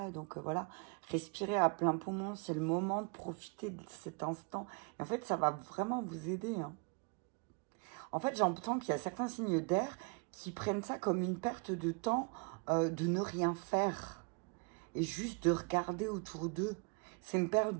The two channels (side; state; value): left; quieter; 33.4 dB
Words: Donc voilà, respirer à plein poumon, c'est le moment de profiter de cet instant. Et en fait, ça va vraiment vous aider. Hein. En fait, j'entends qu'il y a certains signes d'air qui prennent ça comme une perte de temps de ne rien faire. Et juste de regarder autour d'eux. C'est une perte